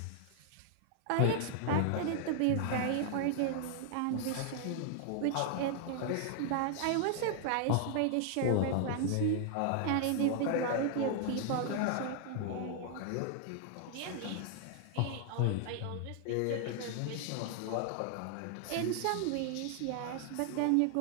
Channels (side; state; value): both; different; correlation 0.00